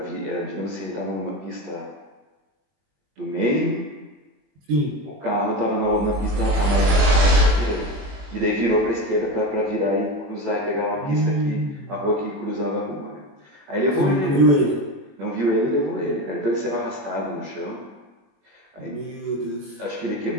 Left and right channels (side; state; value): left; late; 21 ms